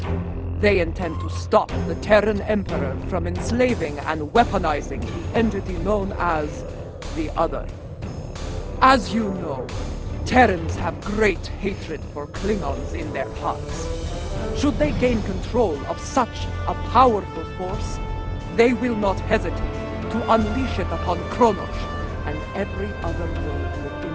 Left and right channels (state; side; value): identical; both; correlation 1.00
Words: They intend to stop the Terran Emperor from enslaving and weaponizing the entity known as the Other. As you know, Terrans have great hatred for Klingons in their hearts. Should they gain control of such a powerful force, they will not hesitate to unleash it upon Kronos and every other world within